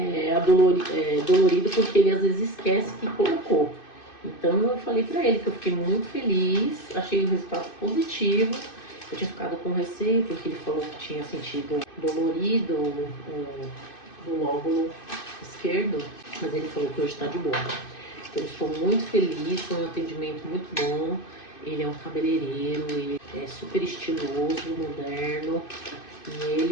dolorido porque ele às vezes esquece que colocou. Então eu falei pra ele que eu fiquei muito feliz, achei o resultado positivo. Eu tinha ficado com receio porque ele falou que tinha sentido dolorido o lóbulo esquerdo, mas ele falou que hoje tá de boa. Então eu estou muito feliz, foi um atendimento muito bom. Ele é um cabeleireiro, ele é super estiloso, moderno. E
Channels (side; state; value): right; late; 2.6 ms